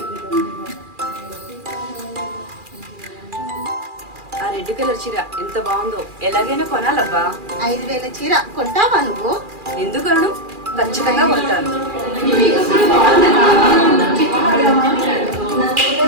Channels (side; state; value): left; late; 2.4 ms